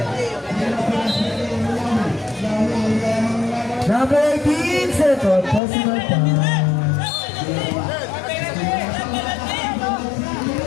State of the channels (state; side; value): drops out; right; at 5.6 s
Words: Number 18, second personal foul.